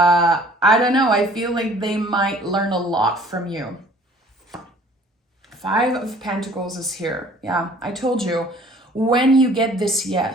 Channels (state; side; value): normal; both; correlation 0.53